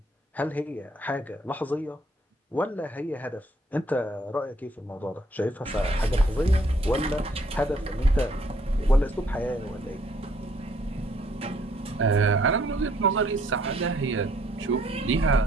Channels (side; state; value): both; normal; correlation 0.66